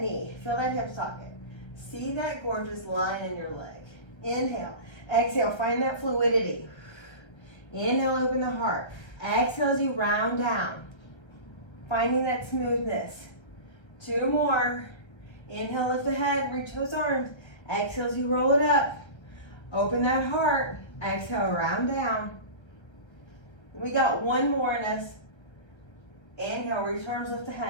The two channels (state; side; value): late; right; 1.3 ms